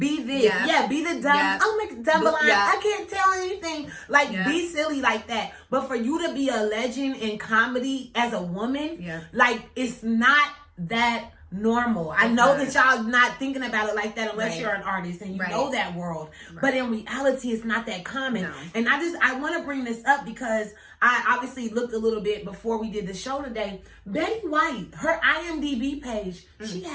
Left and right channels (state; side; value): identical; both; correlation 1.00